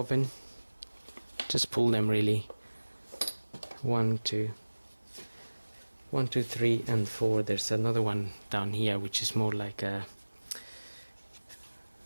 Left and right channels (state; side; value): inverted; both; correlation -1.00